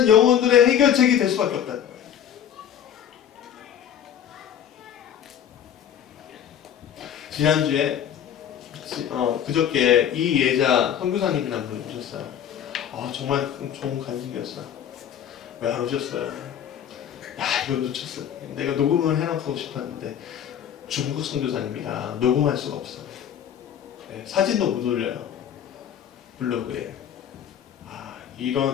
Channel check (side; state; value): right; quieter; 9.3 dB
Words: 영혼들의 해결책이 될 수밖에 없다는 거예요. 지난주에 그저께 이예자 선교사님이라는 분이 오셨어요. 정말 좋은 간증이었어요. 왜 안 오셨어요? 이거 놓쳤어요. 내가 녹음을 해놓고 싶었는데 중국 선교사님이라 녹음할 수가 없어요. 네, 사진도 못 올려요. 블로그에.